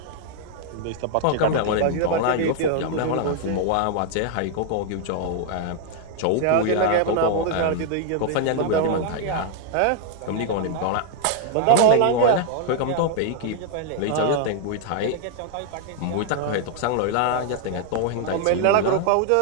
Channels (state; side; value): different; both; correlation 0.00